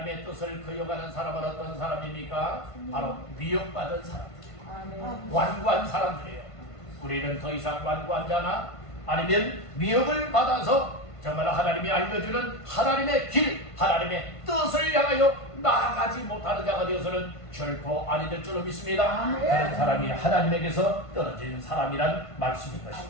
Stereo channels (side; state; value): right; late; 1.5 ms